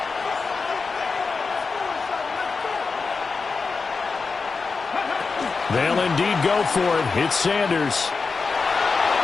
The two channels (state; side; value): quieter; right; 4.6 dB